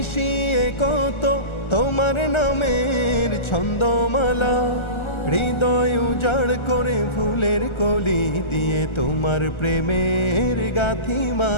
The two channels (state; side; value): late; right; 1.3 ms